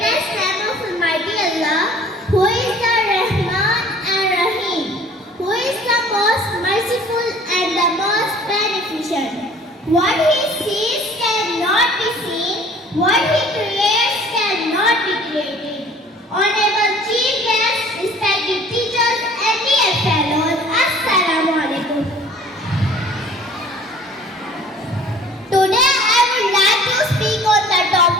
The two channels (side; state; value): both; normal; correlation 0.51